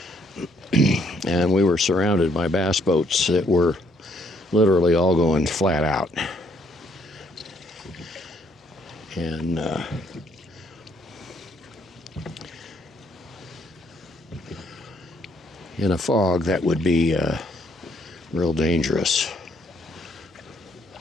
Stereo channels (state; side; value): normal; both; correlation 0.68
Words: And we were surrounded by bass boats that were literally all going flat out. And in a fog, that would be real dangerous.